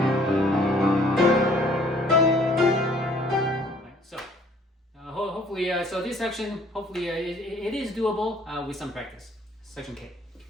Hopefully, so this section, hopefully it is doable with some practice. Section K.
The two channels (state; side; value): normal; both; correlation 0.58